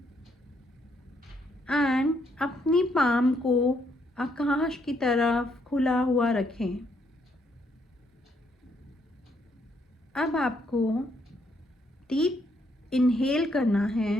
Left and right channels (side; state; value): both; normal; correlation 0.73